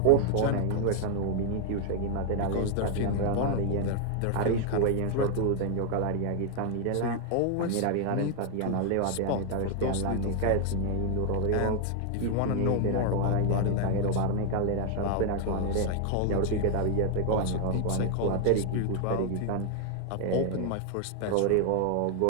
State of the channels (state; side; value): different; both; correlation 0.00